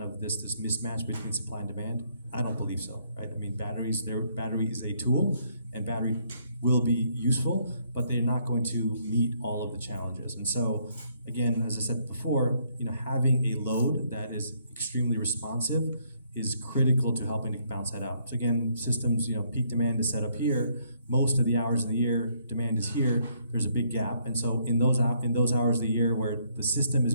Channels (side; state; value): both; inverted; correlation -0.69